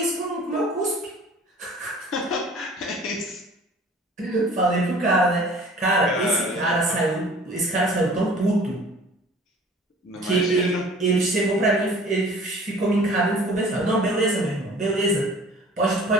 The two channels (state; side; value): normal; both; correlation 0.48